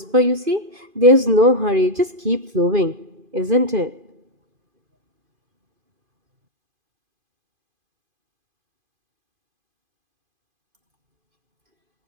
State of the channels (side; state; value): left; late; 2.5 ms